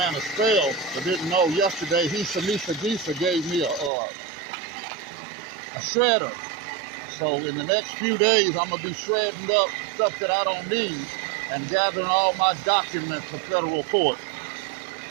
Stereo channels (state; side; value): drops out; left; at 3.9 s